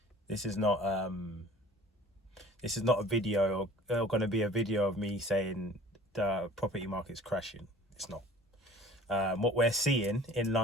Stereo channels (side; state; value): both; normal; correlation 0.47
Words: this is not a video or going to be a video of me saying the property market's crashing. It's not. What we're seeing in